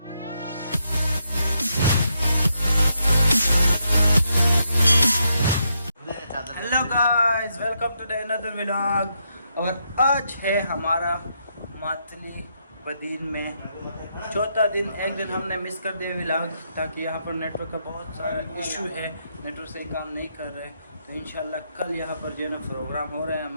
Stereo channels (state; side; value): inverted; both; correlation -0.80